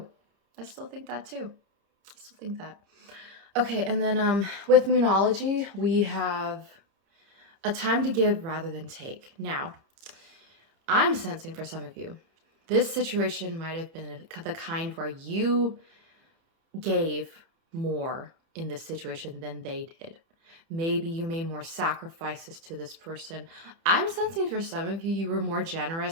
I still think that too. Okay, and then with Moonology, we have a time to give rather than take. Now, I'm sensing for some of you, this situation might have been the kind where you gave more in this situation than they did. Maybe you made more sacrifices to this person. I'm sensing for some of you, you were more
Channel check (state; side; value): late; left; 30 ms